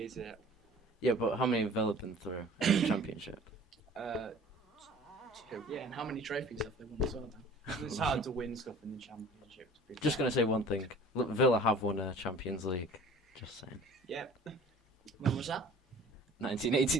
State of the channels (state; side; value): normal; both; correlation 0.46